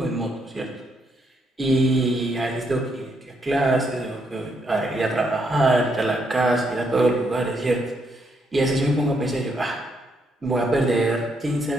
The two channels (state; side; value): normal; both; correlation 0.76